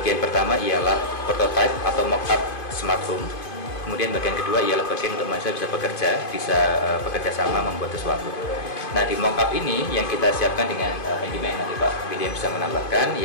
pertama ialah prototype atau mock-up smart home. Kemudian bagian kedua ialah bagian untuk mahasiswa bisa bekerja sama membuat sesuatu. Nah, di mock-up ini yang kita siapkan dengan handyman, nanti Pak William bisa menambahkan,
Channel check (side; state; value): right; late; 2.5 ms